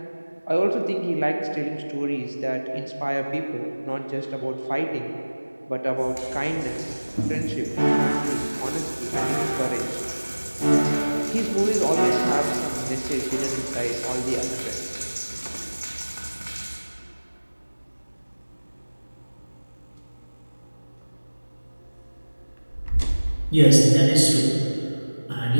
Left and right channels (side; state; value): both; inverted; correlation -1.00